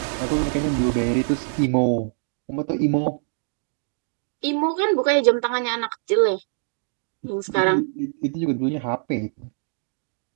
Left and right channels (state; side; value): silent; left; digital silence